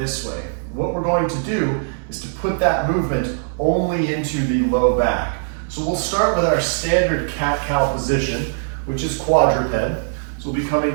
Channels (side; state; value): left; silent; digital silence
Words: way. What we're going to do is to put that movement only into the low back. So we'll start with our standard cat-cow position, which is quadruped. So we'll be coming